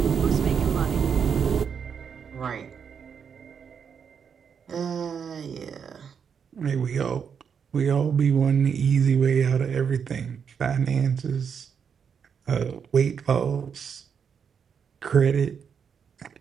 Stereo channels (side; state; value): left; quieter; 7.0 dB